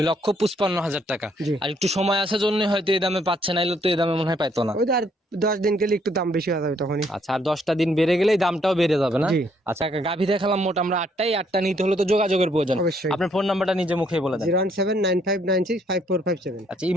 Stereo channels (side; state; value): both; normal; correlation 0.68